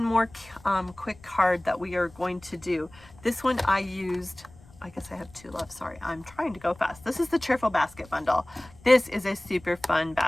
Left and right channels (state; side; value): noise; left; rumble, 24 dB below the sound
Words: more quick card that we are going to do. This one I used, I guess I have two left, sorry, I'm trying to go fast. This is the Cheerful Basket bundle. This is a super fun